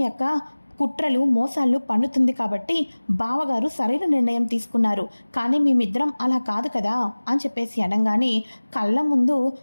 యొక్క కుట్రలు మోసాలు పన్నుతుంది కాబట్టి బావగారు సరైన నిర్ణయం తీసుకున్నారు, కానీ మేమిద్దరం అలా కాదు కదా అని చెప్పేసి అనగానే, కళ్ళ ముందు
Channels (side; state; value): both; inverted; correlation -1.00